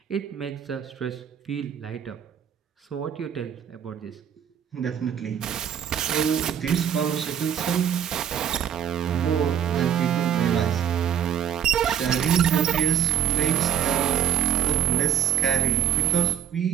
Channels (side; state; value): left; quieter; 9.3 dB